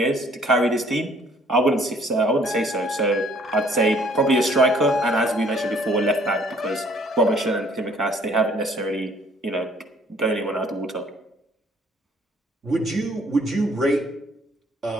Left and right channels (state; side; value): normal; both; correlation 0.59